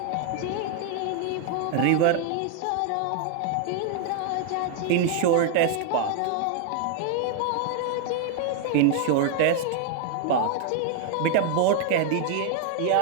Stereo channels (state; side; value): different; both; correlation 0.00